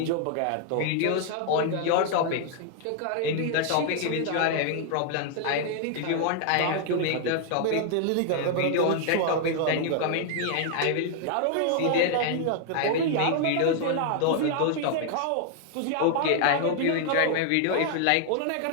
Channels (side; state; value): both; different; correlation 0.00